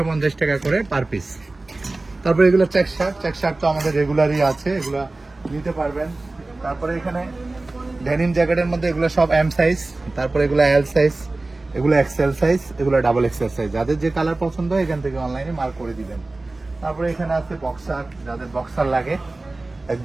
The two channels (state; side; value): quieter; left; 3.1 dB